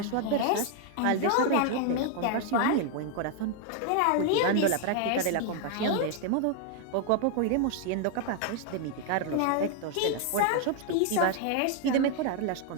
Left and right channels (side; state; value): both; different; correlation 0.00